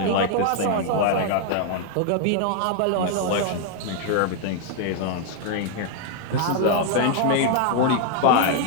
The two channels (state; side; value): different; both; correlation 0.00